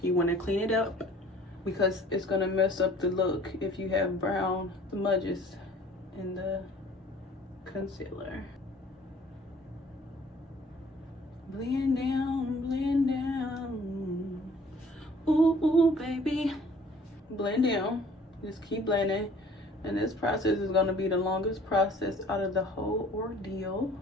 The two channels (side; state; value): both; normal; correlation 0.53